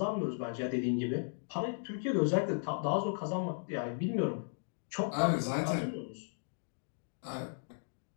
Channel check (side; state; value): right; silent; digital silence